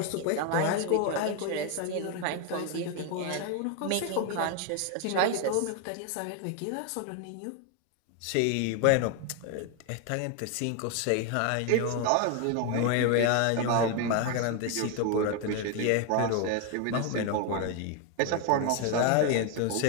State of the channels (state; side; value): different; both; correlation 0.01